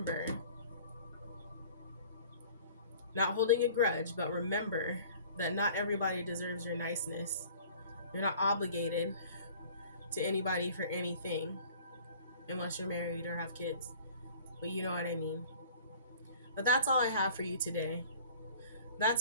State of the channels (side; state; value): both; inverted; correlation -0.48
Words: not holding a grudge, but remember that not everybody deserves your niceness. You're not obligated to anybody for anything unless you're married or have kids. But you know what I mean. But that's all I have for you today.